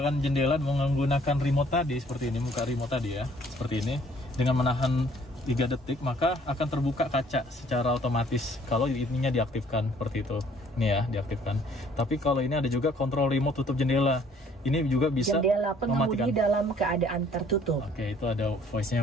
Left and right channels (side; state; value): both; normal; correlation 0.59